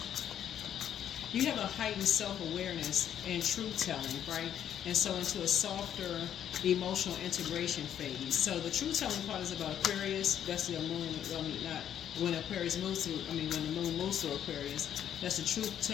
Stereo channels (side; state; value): right; quieter; 9.9 dB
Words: you have a heightened self-awareness and truth-telling, right? And so into a softer emotional integration phase. So the truth-telling part is about Aquarius. That's the moon, not when Aquarius moves through, when the moon moves through Aquarius. That's the